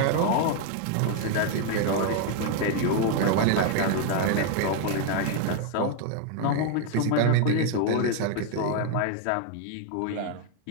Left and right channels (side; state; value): both; different; correlation 0.01